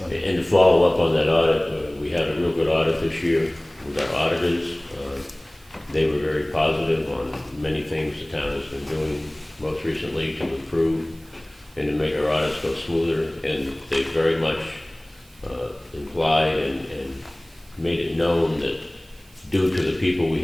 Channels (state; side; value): noise; right; hiss, 28 dB below the sound